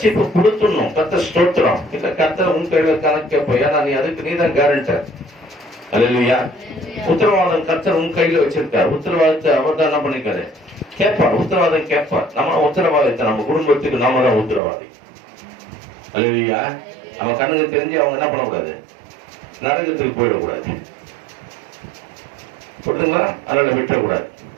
கொடுத்துடணும். கர்த்தர் ஸ்தோத்திரம். இல்ல கர்த்தர் உன் கையில கணக்கு, ஏன்னா நீ அதுக்கு நீதான் கேரண்டர். அல்லேலூயா. உத்தரவாதம் கர்த்தர் உன் கையில வச்சிருக்காரு. உத்தரவாதத்தை அவர் தான் என்ன பண்ணிக்காரு, கேட்பார். உத்தரவாதம் கேட்பார். நம்ம உத்தரவாதத்தை நம்ம குடும்பத்துக்கு நாம தான் உத்தரவாதி. அல்லேலூயா. நம்ம கண்ணுக்கு தெரிஞ்சு அவங்க என்ன பண்ணக்கூடாது, நரகத்துக்கு போயிடக்கூடாது. கொடுத்துங்களா, அதனால விட்டுறக்கூடாது.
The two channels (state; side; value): drops out; left; at 14.6 s